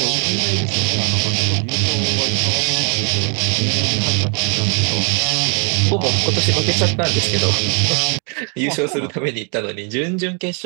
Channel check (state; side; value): quieter; left; 39.5 dB